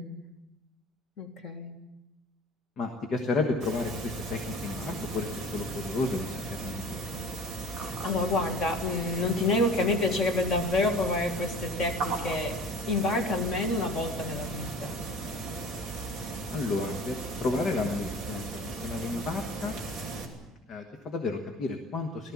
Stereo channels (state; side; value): normal; both; correlation 0.43